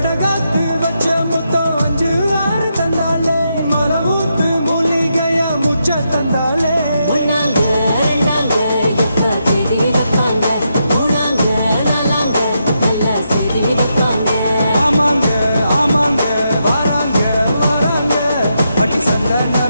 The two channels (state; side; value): inverted; both; correlation -0.82